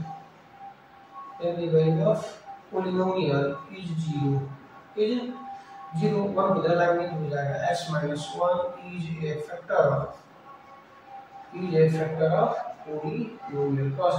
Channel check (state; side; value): identical; both; correlation 1.00